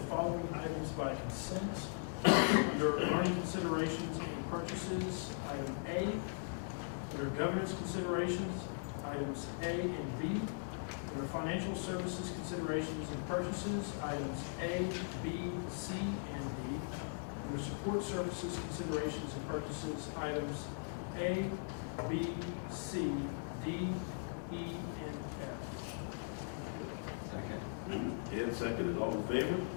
following items by consent. Under learning considerations and purchases, item A. Under governance considerations, items A and B. Under financial services considerations and purchases, items A, B, C, and D. Under support services considerations and purchases, items A, B, C, D, E, and F. Second. And seconded. All in favor?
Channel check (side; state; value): right; silent; digital silence